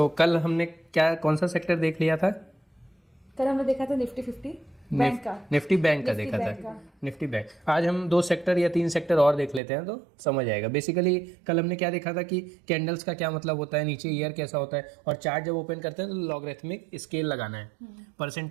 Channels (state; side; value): drops out; left; at 9.6 s